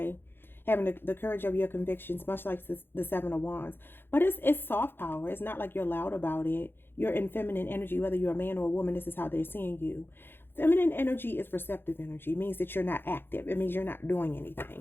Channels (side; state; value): right; late; 0.10 ms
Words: Having the courage of your convictions, much like the Seven of Wands. But it's soft power. It's not like you're loud about it. You're in feminine energy, whether you're a man or a woman. This is how they're seeing you. Feminine energy is receptive energy. It means that you're not active. It means you're not doing